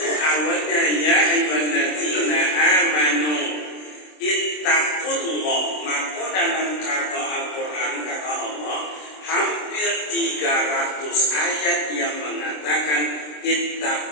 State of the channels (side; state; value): right; late; 26 ms